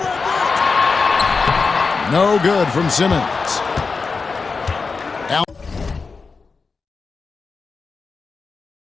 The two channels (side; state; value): right; quieter; 4.6 dB